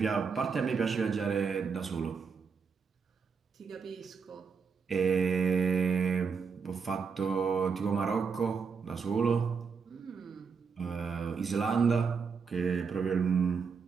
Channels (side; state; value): left; quieter; 5.7 dB